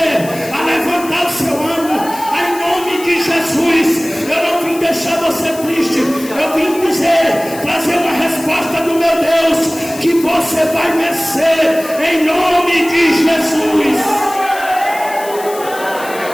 a levantar o seu ânimo em nome de Jesus. Eu não vim deixar você triste. Eu vim dizer, trazer uma resposta do meu Deus, que você vai vencer em nome de Jesus.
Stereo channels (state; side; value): noise; left; hiss, 15 dB below the sound